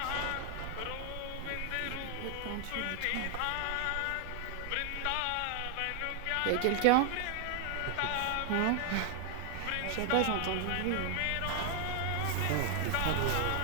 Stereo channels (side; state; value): both; different; correlation 0.00